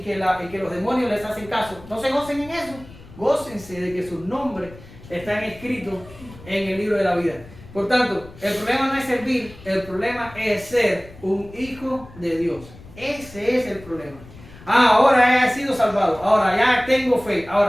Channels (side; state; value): left; noise; rumble, 19 dB below the sound